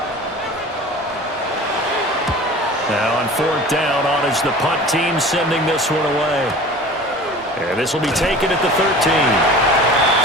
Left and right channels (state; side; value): normal; both; correlation 0.40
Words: Now on fourth down, on is the punt team sending this one away. And this will be taken at the 13.